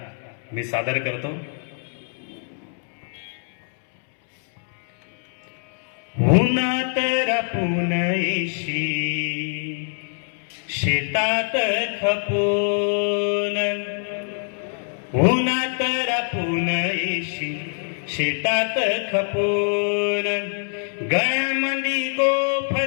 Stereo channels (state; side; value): silent; right; 63 dB below the other